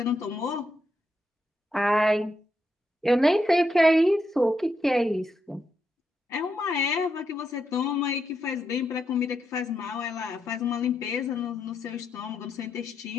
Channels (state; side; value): normal; both; correlation 0.82